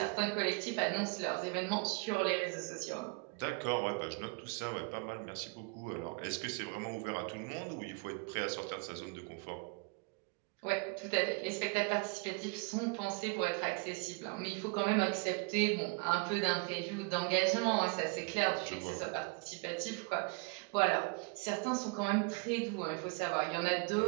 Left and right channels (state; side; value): quieter; left; 32.8 dB